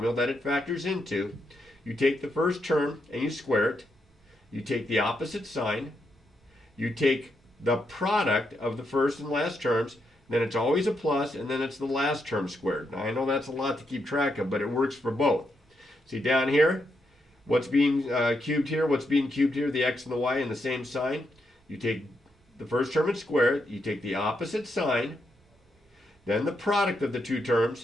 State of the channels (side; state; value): both; normal; correlation 0.81